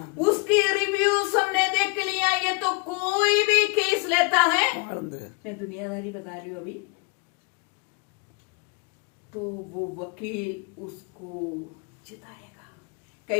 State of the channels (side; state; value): right; quieter; 31.5 dB